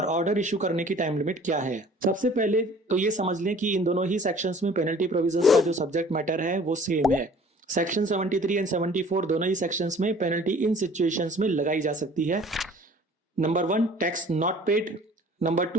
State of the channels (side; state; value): both; normal; correlation 0.50